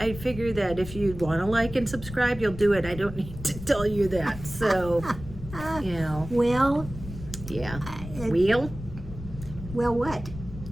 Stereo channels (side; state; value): left; noise; rumble, 12 dB below the sound